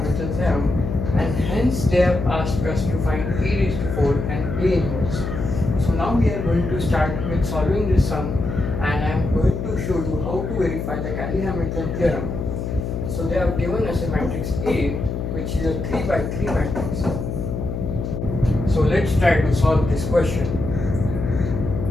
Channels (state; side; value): noise; left; hum, 4 dB below the sound